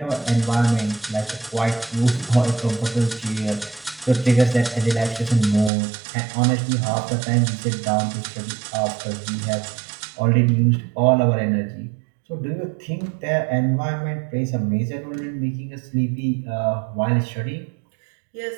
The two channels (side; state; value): left; drops out; at 5.7 s